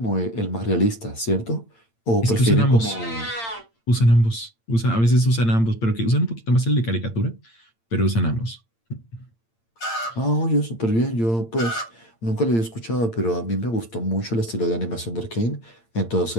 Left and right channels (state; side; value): late; right; 8.8 ms